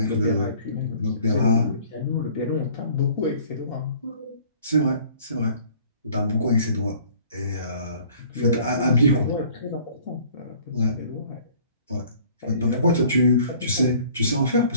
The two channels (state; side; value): inverted; both; correlation -0.53